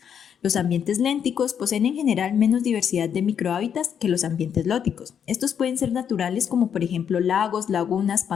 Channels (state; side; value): quieter; right; 8.1 dB